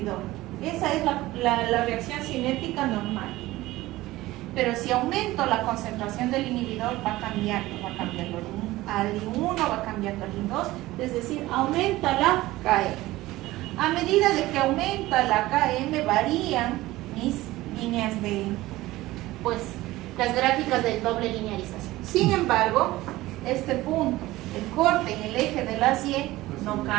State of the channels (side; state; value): left; quieter; 17.8 dB